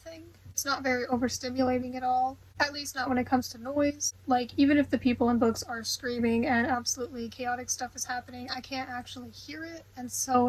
It's not very overstimulating at all, at least not when it comes to noise. Like, even if the people in books are screaming and absolutely chaotic stuff is happening, I can't actually hear it, and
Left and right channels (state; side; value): identical; both; correlation 1.00